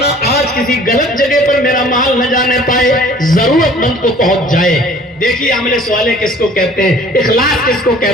آج کسی غلط جگہ پر میرا مال نہ جانے پائے، ضرورت مند کو پہنچ جائے. دیکھیے عمل صالح کس کو کہتے ہیں، اخلاص کس کو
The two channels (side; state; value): both; normal; correlation 0.51